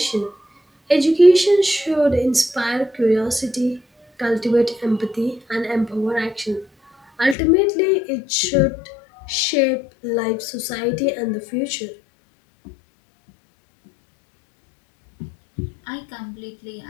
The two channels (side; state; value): right; drops out; at 7.4 s